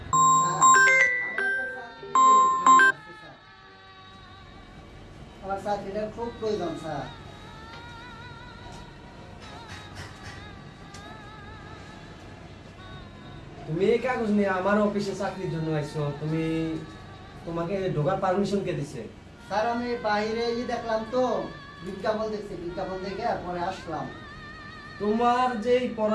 আমার চাকরিটার খুব প্রয়োজন স্যার। তুমি এই কাগজ নিয়ে আমার অফিসে চাকরির জন্য আইছো, তোমাকে ঢোকার পারমিশন কে দিছে? স্যার আমি বাইরে দেখলাম তো, বিজ্ঞাপন দেখছি, বিজ্ঞাপন দেখে পরে আসলাম। তোমার যে এই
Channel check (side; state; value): both; identical; correlation 1.00